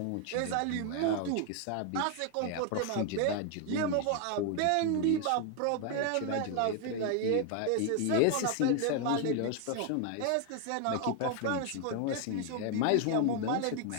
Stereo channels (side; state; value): both; different; correlation 0.01